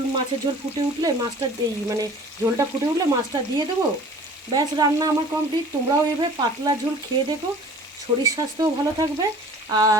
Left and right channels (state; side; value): normal; both; correlation 0.47